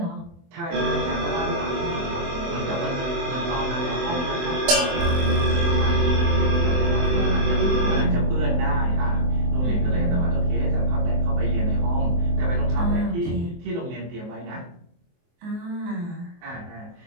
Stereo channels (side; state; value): left; late; 23 ms